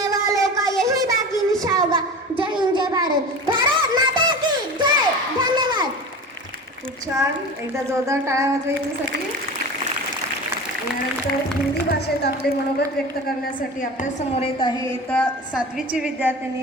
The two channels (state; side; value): normal; both; correlation 0.32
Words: वालों का यही बाकी निशा होगा. जय हिंद, जय भारत. भारत माता की जय. धन्यवाद. खूप छान. एकदा जोरदार टाळ्या वाजवा याच्यासाठी. यानंतर हिंदी भाषेत आपले मनोगत व्यक्त करण्यासाठी आपल्या समोर येत आहे इयत्ता 7वीची